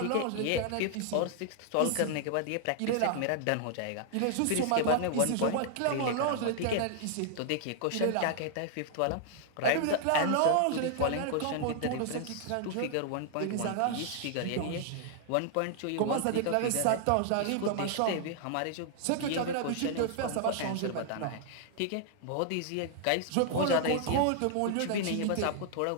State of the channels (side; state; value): both; different; correlation 0.00